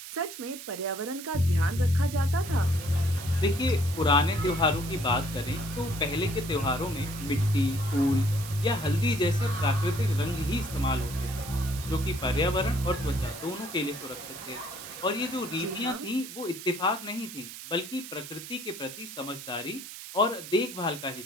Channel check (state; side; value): noise; right; hiss, 12 dB below the sound